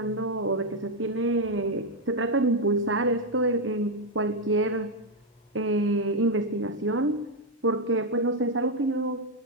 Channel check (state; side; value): normal; both; correlation 0.02